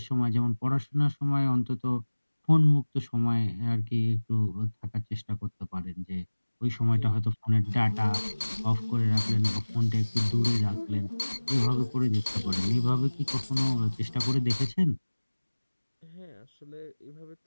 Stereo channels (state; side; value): inverted; both; correlation -1.00